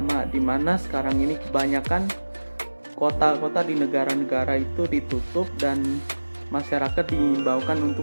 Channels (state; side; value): inverted; both; correlation -1.00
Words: di mana sekarang ini kebanyakan kota-kota di negara-negara itu ditutup dan masyarakat diimbaukan